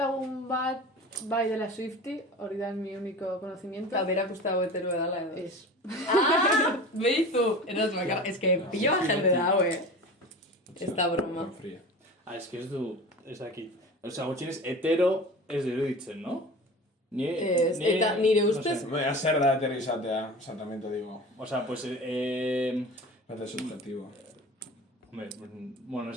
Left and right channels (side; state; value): both; normal; correlation 0.35